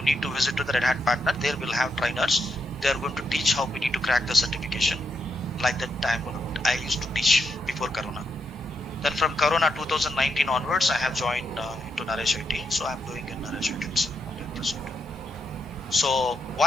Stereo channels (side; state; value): both; normal; correlation 0.81